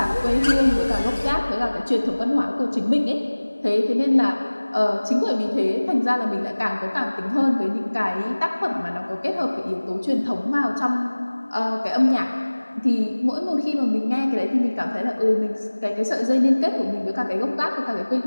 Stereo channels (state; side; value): inverted; both; correlation -1.00